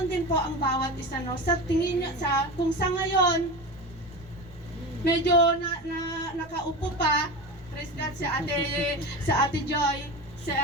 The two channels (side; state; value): right; noise; rumble, 24 dB below the sound